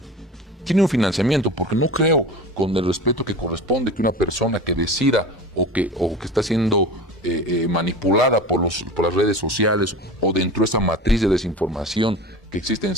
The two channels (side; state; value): both; normal; correlation 0.34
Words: Tiene un financiamiento, porque no creo, con el respeto que corresponde, que una persona que decida o que está siendo manipulada por las redes sociales o dentro de esa matriz de desinformación que existe en